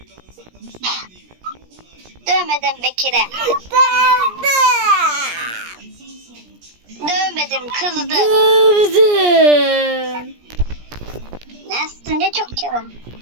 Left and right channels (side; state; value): left; late; 17 ms